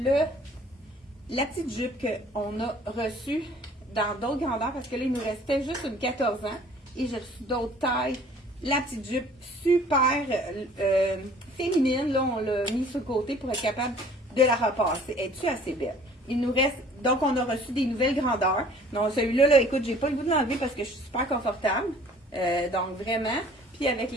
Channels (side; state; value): both; normal; correlation 0.52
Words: la petite jupe qu'on a reçue dans d'autres grandeurs parce que là, il nous restait juste une 14 ans et j'ai reçu d'autres tailles. La petite jupe super féminine, là, on l'a mis sur le côté pour être capable de la repasser. Es-tu assez belle? Il nous reste, donc on a reçu des nouvelles grandeurs. Donc celui-là, là, écoute, j'ai pas le goût de l'enlever parce que je suis super confortable. Donc vraiment. Puis avec